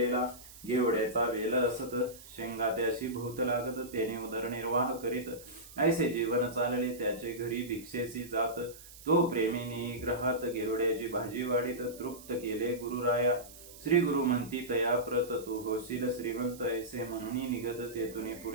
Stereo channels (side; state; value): right; noise; hiss, 18 dB below the sound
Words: घेवड्याचा वेल असत शेंगा त्याशी भोवत लागत त्याने उदरनिर्वाह करीत ऐसे जीवन चालले त्याचे घरी भिक्षेची जात तो प्रेमीने ग्रहात घेवड्याची भाजी वाढीत तृप्त केले गुरुराया श्री गुरु म्हणती तया प्रत तू होशील श्रीमंत ऐसे म्हणून निघत तेथून